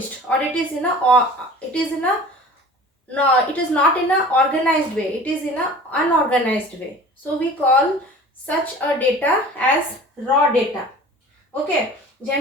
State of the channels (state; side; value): normal; both; correlation 0.42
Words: or it is in a no, it is not in a organized way, it is in a unorganized way. So we call such a data as raw data. Okay,